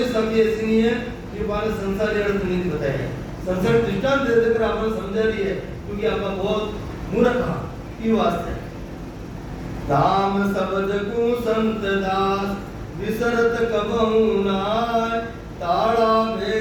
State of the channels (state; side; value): identical; both; correlation 1.00